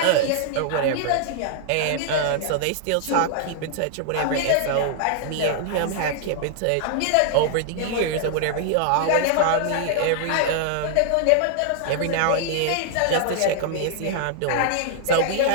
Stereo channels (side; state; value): both; different; correlation -0.01